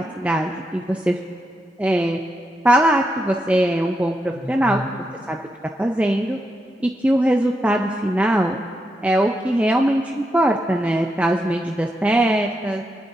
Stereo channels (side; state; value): both; normal; correlation 0.84